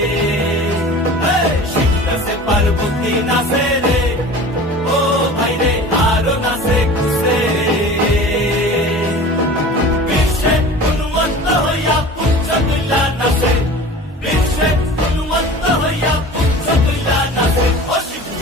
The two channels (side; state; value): both; normal; correlation 0.39